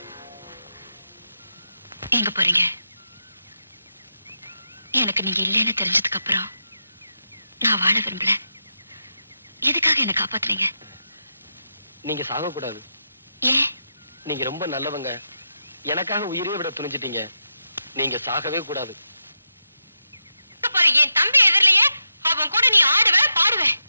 எங்க போறீங்க? எனக்கு நீங்க இல்லைன்னு தெரிஞ்சதுக்கு அப்புறம் நான் வாழ விரும்பல. எதுக்காக என்ன காப்பாத்துறீங்க? நீங்க சாகக்கூடாது. ஏன்? நீங்க ரொம்ப நல்லவங்க. எனக்காக உயிரே விட துணிஞ்சிட்டீங்க. நீங்க சாகவே கூடாது. என் தம்பி எதிரிலேயே அவன் கூட நீ ஆடுவ பாடுவ.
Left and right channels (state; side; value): inverted; both; correlation -0.85